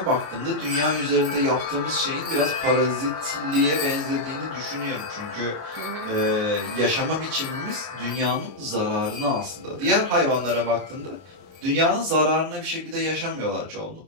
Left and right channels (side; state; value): left; late; 33 ms